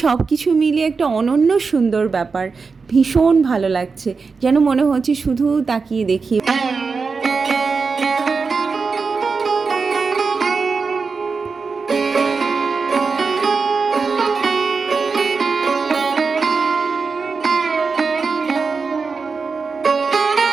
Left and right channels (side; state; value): left; quieter; 4.8 dB